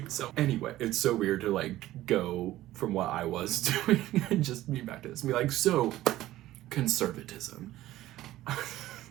So anyway, it's so weird to like go from what I was doing and just be back to this and be like, so conservatism.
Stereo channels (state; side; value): quieter; left; 15.2 dB